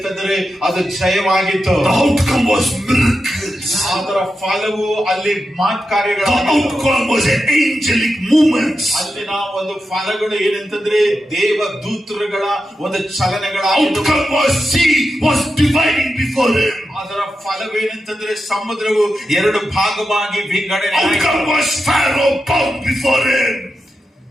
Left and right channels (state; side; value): normal; both; correlation 0.89